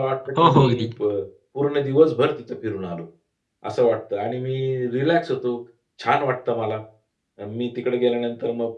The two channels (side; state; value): both; identical; correlation 1.00